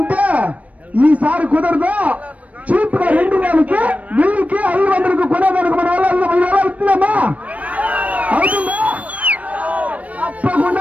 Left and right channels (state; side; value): late; left; 0.067 ms